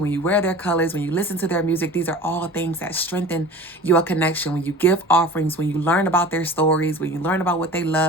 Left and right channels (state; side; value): normal; both; correlation 0.39